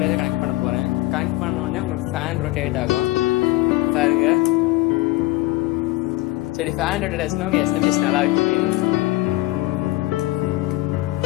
கனெக்ட் பண்ண போகிறேன். கனெக்ட் பண்ண உடனே உங்களுக்கு ஃபேன் ரொட்டேட் ஆகும் பாருங்க. சரி, ஃபேன் ரொட்டேட் ஆச்சுன்னா உங்கள் SMPS நல்லா இருக்கு.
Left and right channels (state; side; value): quieter; right; 18.9 dB